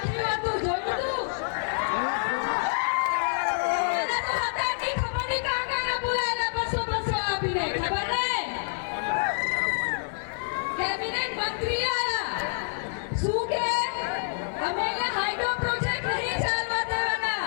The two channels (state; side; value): silent; right; 60 dB below the other